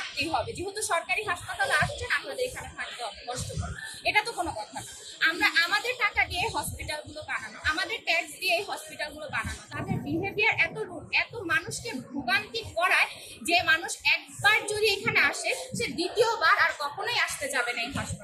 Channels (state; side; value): identical; both; correlation 1.00